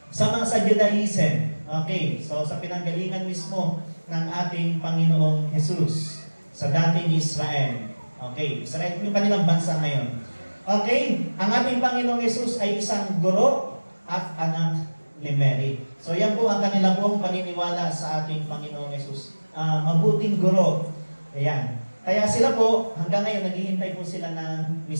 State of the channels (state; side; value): inverted; both; correlation -1.00